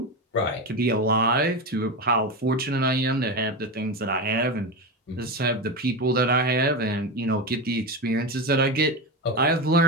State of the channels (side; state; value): both; normal; correlation 0.17